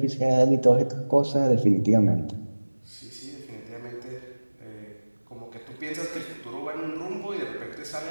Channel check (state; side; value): inverted; both; correlation -1.00